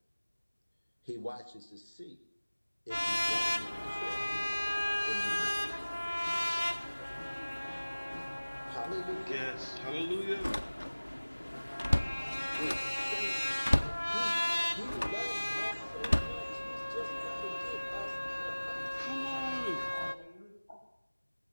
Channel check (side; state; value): both; inverted; correlation -1.00